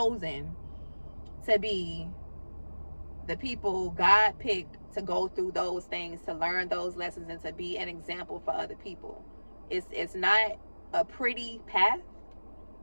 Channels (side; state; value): both; inverted; correlation -1.00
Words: to be the people God picked to go through those things, to learn those lessons, and to be an example for other people. It's not a pretty path.